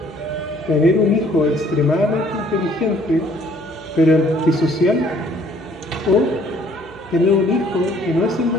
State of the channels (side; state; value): both; normal; correlation 0.60